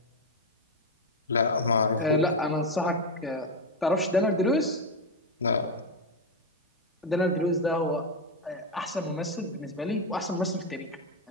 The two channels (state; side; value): normal; both; correlation 0.09